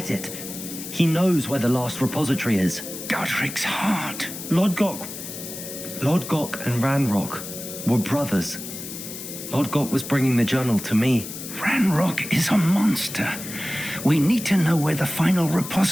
it. He knows where the last repository is. Godric's heart. Lodgok and Ranrock were brothers. Lodgok was bringing the journal to me. Ranrock is a monster. We need to know where the final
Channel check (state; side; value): noise; left; hiss, 10 dB below the sound